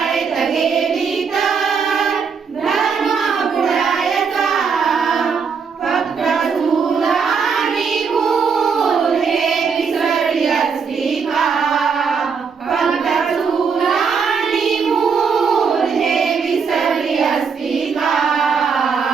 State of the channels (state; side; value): quieter; left; 5.9 dB